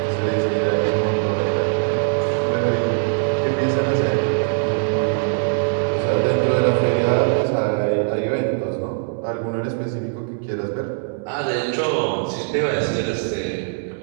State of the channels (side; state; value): left; silent; 63 dB below the other